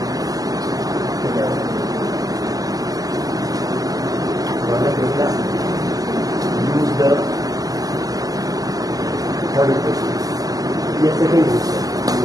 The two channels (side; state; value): left; late; 0.17 ms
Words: Use the third equation. Yes, second equation.